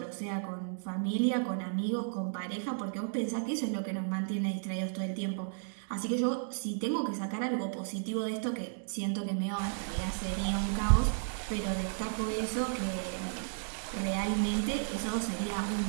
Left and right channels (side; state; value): left; silent; digital silence